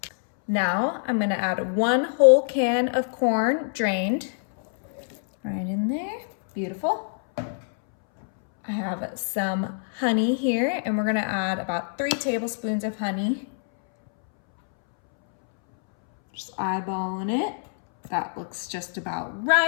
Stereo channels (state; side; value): silent; right; 62 dB below the other